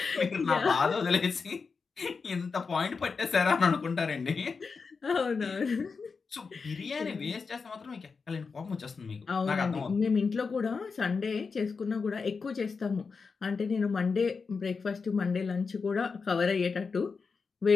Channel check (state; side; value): quieter; right; 5.0 dB